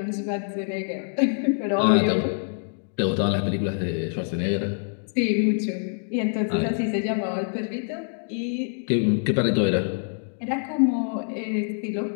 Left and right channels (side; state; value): right; silent; digital silence